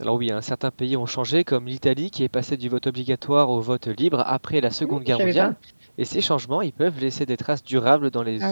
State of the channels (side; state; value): both; inverted; correlation -1.00